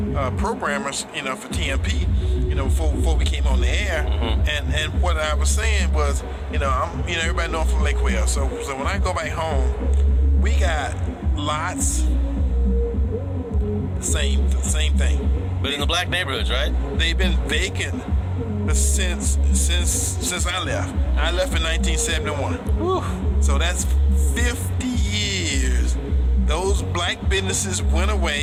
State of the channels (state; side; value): identical; both; correlation 1.00